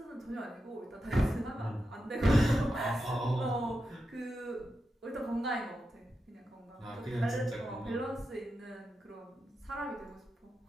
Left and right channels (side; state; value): both; normal; correlation 0.88